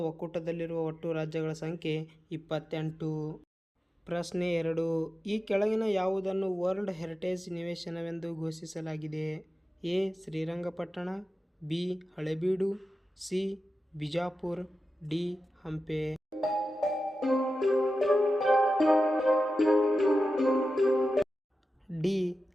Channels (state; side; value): normal; both; correlation 0.92